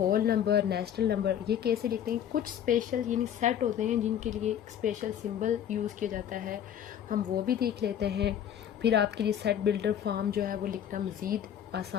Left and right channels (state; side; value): quieter; right; 9.6 dB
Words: नंबर, नेचुरल नंबर, ये कैसे लिखते हैं, कुछ स्पेशल यानी सेट होते हैं जिनके लिए स्पेशल सिंबल यूज़ किया जाता है, हम वो भी देख लेते हैं। फिर आपके लिए सेट बिल्डर फॉर्म जो है वो लिखना मज़ीद